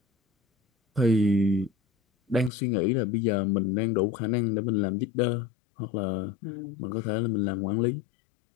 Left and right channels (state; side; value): drops out; right; at 2.5 s